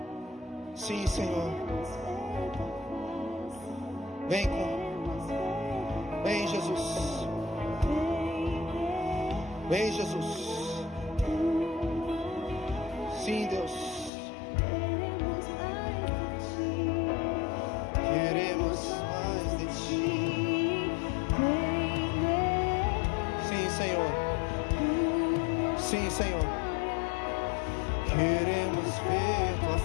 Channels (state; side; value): drops out; right; at 14.1 s